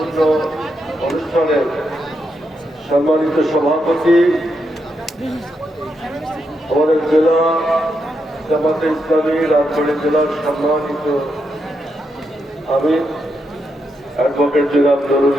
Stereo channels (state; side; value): normal; both; correlation 0.82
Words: অনুষ্ঠানের সম্মানিত সভাপতি, আমাদের জেলা জামাতে ইসলামী রাজবাড়ী জেলার সম্মানিত আমির অ্যাডভোকেট জনাব নুরুল